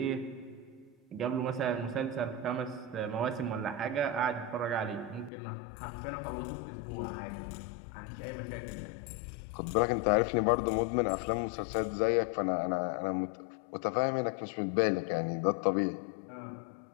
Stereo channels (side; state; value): right; drops out; at 5.3 s